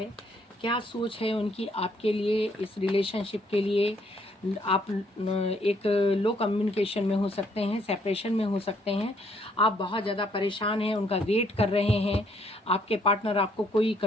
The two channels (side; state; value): both; normal; correlation 0.67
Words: क्या सोच है उनकी आपके लिए, इस रिलेशनशिप के लिए। आप एक लो कम्युनिकेशन में हो सकते हैं, सेपरेशन में हो सकते हैं, आप बहुत ज़्यादा परेशान हैं, उनका वेट कर रहे हैं, आपके पार्टनर आपको कोई